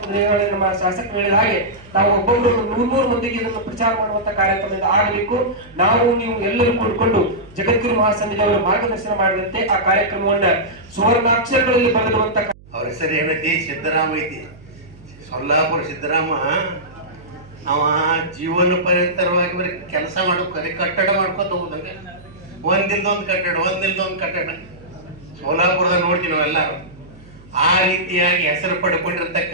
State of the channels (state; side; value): noise; right; hum, 23 dB below the sound